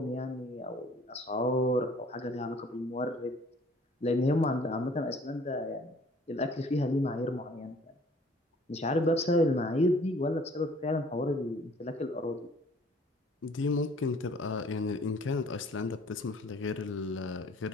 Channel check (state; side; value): normal; both; correlation 0.55